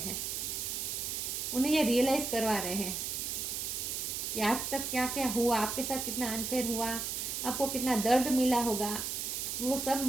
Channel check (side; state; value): right; noise; hiss, 3 dB below the sound